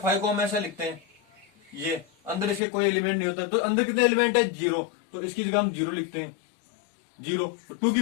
फाइव को हम ऐसा लिखते हैं, ये अंदर इसके कोई एलिमेंट नहीं होता, तो अंदर कितने एलिमेंट है, जीरो, तो इसकी जगह हम जीरो लिखते हैं, जीरो। टू की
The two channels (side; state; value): right; drops out; at 2.6 s